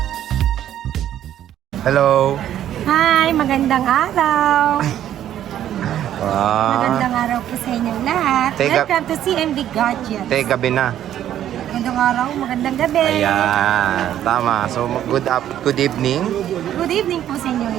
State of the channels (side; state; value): left; quieter; 11.3 dB